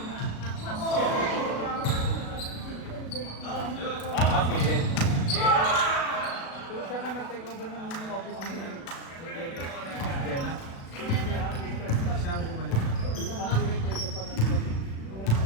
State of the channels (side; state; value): right; late; 36 ms